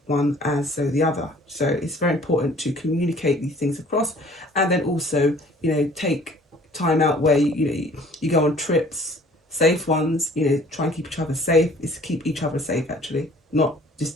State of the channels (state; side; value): normal; both; correlation 0.53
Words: one as so the other. So it's very important to communicate these things across, and then also, you know, take time out where you go on trips, safe ones, you know, try and keep each other safe. It's to keep each other safe, actually, not